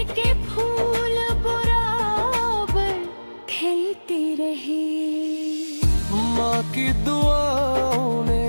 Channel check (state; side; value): inverted; both; correlation -1.00